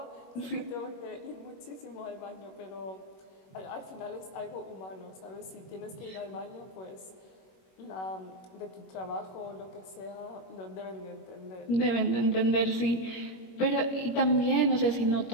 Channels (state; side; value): late; right; 21 ms